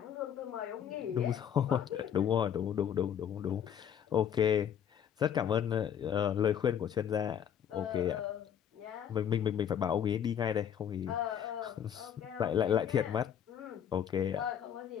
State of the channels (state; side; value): quieter; right; 9.0 dB